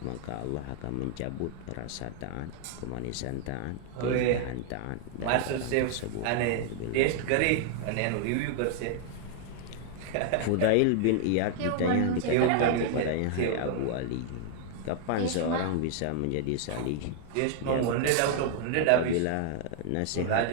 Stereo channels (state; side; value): different; both; correlation 0.00